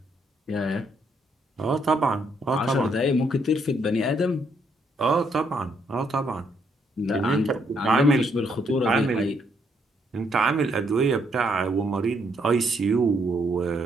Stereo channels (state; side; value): normal; both; correlation 0.72